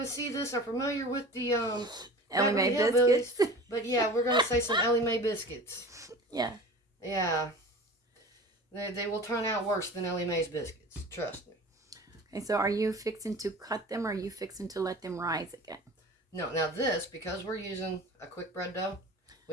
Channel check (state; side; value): normal; both; correlation 0.38